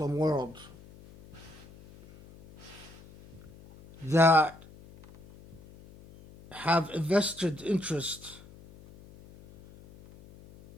world that have a vested interest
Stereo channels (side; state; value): left; noise; hum, 21 dB below the sound